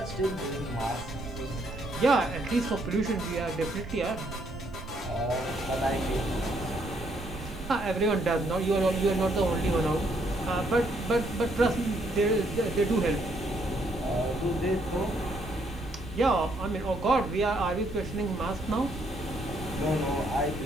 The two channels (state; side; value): noise; right; rumble, 12 dB below the sound